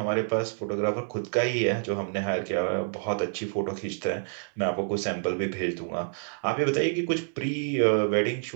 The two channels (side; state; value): left; silent; digital silence